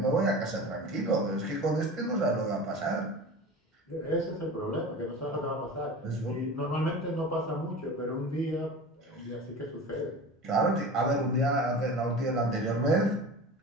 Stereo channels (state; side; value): normal; both; correlation 0.34